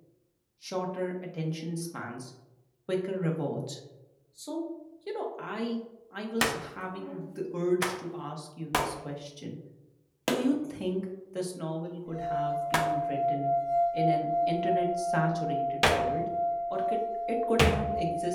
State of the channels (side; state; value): both; identical; correlation 1.00